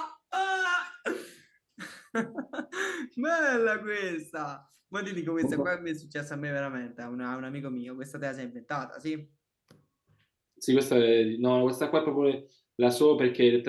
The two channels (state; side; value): identical; both; correlation 1.00